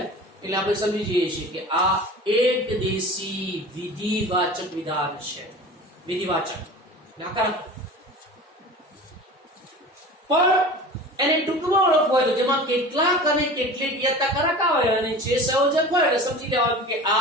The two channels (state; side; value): normal; both; correlation 0.37